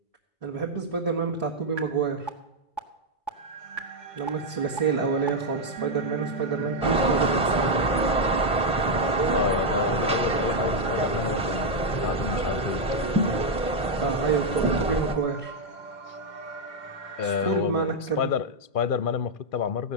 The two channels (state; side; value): late; right; 1.5 ms